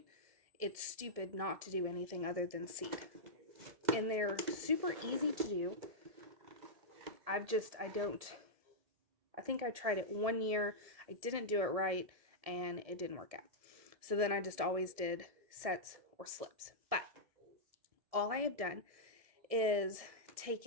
it's stupid not to do anything other than seed. And they're super easy to do. I think I tried it 1 year, I didn't do it right, and it didn't work out. So then I just always did sets or slips. But all I have done is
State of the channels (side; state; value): left; late; 1.7 ms